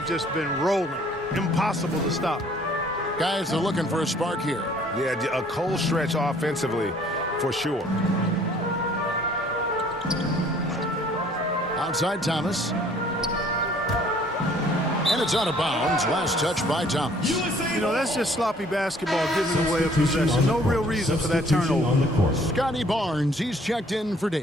just been rolling. Impossible to stop. Guys are looking for a spark here. Yeah, a cold stretch offensively for sure. Outside Thomas. And it's out of bounds. Last touch by Thomas. You know, that's just sloppy basketball giving away a possession. No real reason for that turnover. On the court. Scotty Barnes, he's checked in for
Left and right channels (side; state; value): both; normal; correlation 0.58